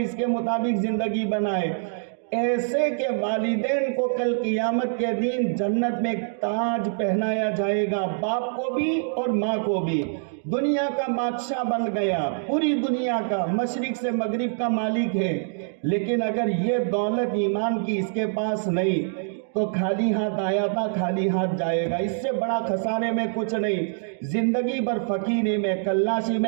اس کے مطابق زندگی بنائے، ایسے کہ والدین کو کل قیامت کے دن جنت میں ایک تاج پہنایا جائے گا، باپ کو بھی اور ماں کو بھی۔ دنیا کا بادشاہ بن گیا، پوری دنیا کا، مشرق سے مغرب کا مالک ہے، لیکن اگر یہ دولت ایمان کی اس کے پاس نہیں تو خالی ہاتھ آیا تھا خالی ہاتھ جائے گا، اس سے بڑا خسارے میں کچھ نہیں۔ زندگی بھر فقیری میں، کلاشی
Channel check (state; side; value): silent; left; digital silence